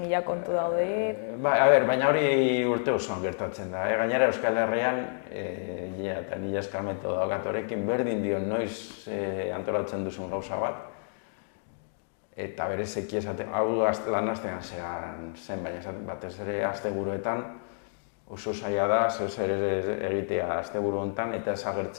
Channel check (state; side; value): silent; right; digital silence